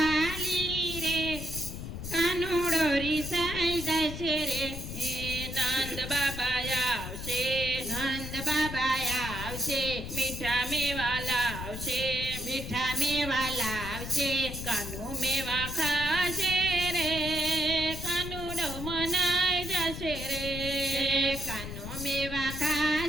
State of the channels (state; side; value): noise; left; rumble, 8 dB below the sound